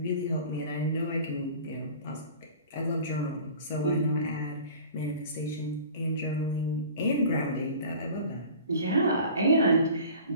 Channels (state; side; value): inverted; both; correlation -0.43